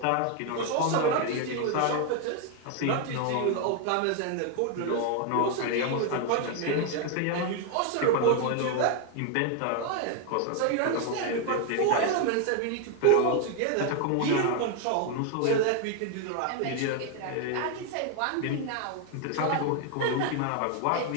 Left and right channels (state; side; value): different; both; correlation 0.01